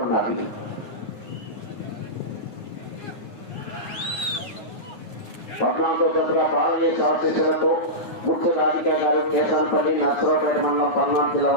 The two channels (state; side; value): late; right; 9.6 ms